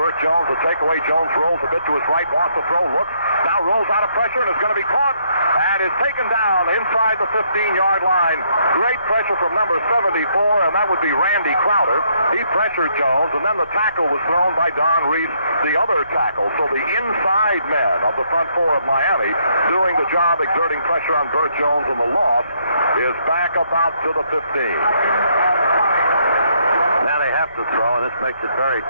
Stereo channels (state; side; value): inverted; both; correlation -0.72